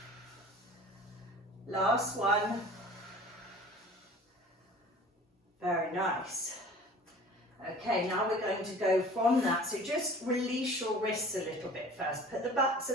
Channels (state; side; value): normal; both; correlation 0.44